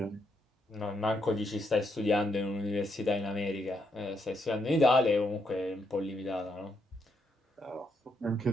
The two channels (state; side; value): normal; both; correlation 0.78